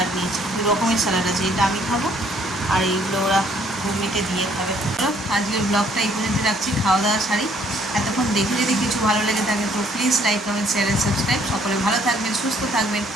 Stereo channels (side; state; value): both; normal; correlation 0.64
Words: নিয়েছি, 2 রকমের স্যালাড আছে, এটা আমি খাবো আর এইগুলো ওরা ঘুগনিতে দিয়ে খাবে। আজকের ব্লগটা এই পর্যন্ত রাখছি, খাওয়া দাওয়া সারি। এতক্ষণ দেখে যদি কিছু ভালো লেগে থাকে তো please like, comment, share and subscribe. সকলে ভালো থাকবেন, সুস্থ থাকবেন।